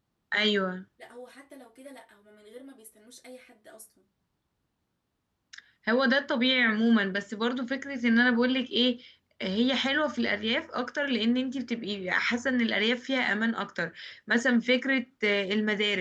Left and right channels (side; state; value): both; identical; correlation 1.00